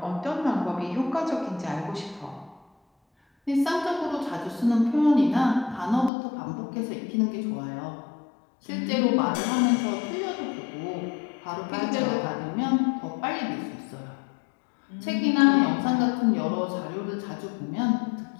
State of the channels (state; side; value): drops out; right; at 6.1 s